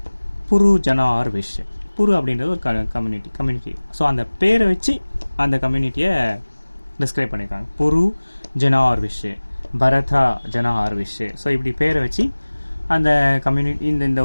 புரு ஜனா ஆர் விஷ். புரு அப்படின்றது ஒரு கம்யூனிட்டி. ஸோ அந்த பேரை வச்சு அந்த கம்யூனிட்டியை டிஸ்கிரைப் பண்ணியிருக்காங்க. புரு ஜனா ஆர் விஷ், பரதா ஜனா ஆர் விஷ். ஸோ இப்படி பேரை வச்சு அந்த கம்யூனிட்டி இந்த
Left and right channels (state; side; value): inverted; both; correlation -1.00